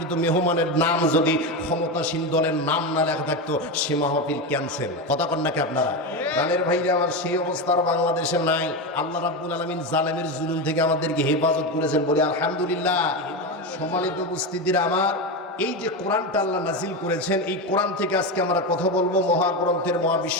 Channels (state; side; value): normal; both; correlation 0.16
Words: মেহমানের নাম যদি ক্ষমতাসীন দলের নাম না লেখা থাকতো সে মাহফিল ক্যান্সেল। কথা কন নাকি আপনারা? প্রাণের ভাইরা আমার, সেই অবস্থার বাংলাদেশে নাই। আল্লাহ রাব্বুল আলামিন জালেমের জুলুম থেকে আমাদেরকে হেফাজত করেছেন, বলি আলহামদুলিল্লাহ। সম্মানিত উপস্থিতিরা আমার, এই যে কোরআনটা আল্লাহ নাজিল করেছেন, এই কোরআন থেকে আজকে আমরা কথা বলবো, মহাগ্রন্থের